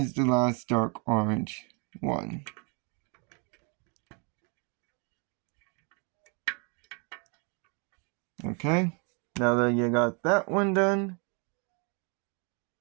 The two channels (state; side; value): quieter; left; 35.2 dB